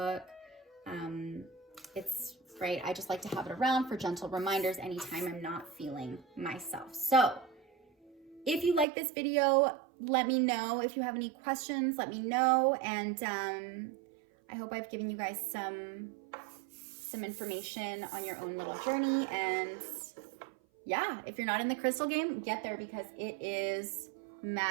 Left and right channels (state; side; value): drops out; left; at 8.8 s